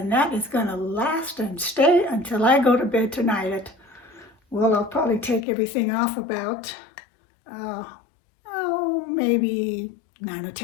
that is going to last and stay until I go to bed tonight. Well, I'll probably take everything off about, maybe 9 or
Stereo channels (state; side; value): drops out; right; at 5.5 s